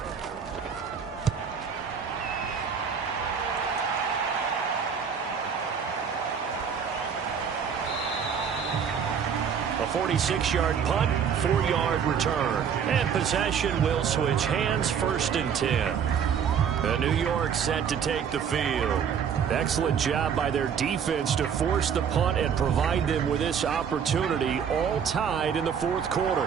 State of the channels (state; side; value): quieter; left; 7.3 dB